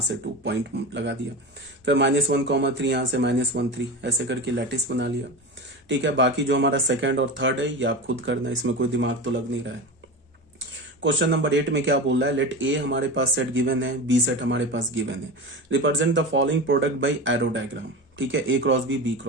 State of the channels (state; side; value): normal; both; correlation 0.26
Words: 2 पॉइंट लगा दिया, फिर -1 3, यहां से -1 3, ऐसे करके लैटिस बना लिया। ठीक है, बाकी जो हमारा सेकंड और थर्ड है ये आप खुद करना, इसमें कोई दिमाग तो लग नहीं रहा है। क्वेश्चन नंबर 8 में क्या बोल रहा है, लेट ए हमारे पास सेट गिवन है, बी सेट हमारे पास गिवन है, represent the following product by arrow diagram. ठीक है, A cross B